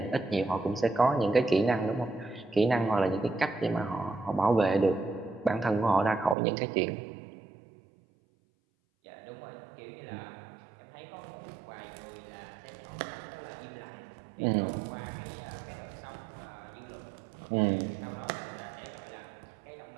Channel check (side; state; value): left; drops out; at 6.4 s